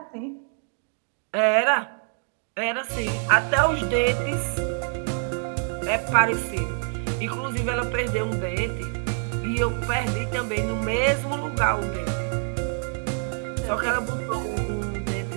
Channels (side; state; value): left; silent; 56 dB below the other